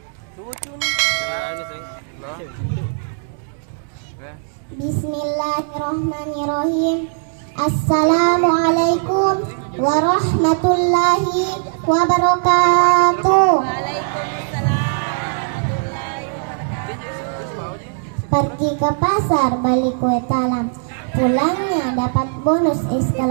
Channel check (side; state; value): left; silent; digital silence